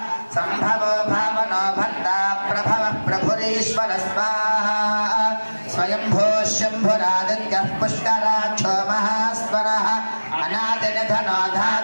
सम्भवो भावनो भर्ता प्रभवः प्रभुरीश्वरः स्वाहा स्वयंभो शम्भुरादित्यः पुष्कराक्षो महास्वरः अनादिनिधनो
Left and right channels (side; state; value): both; inverted; correlation -1.00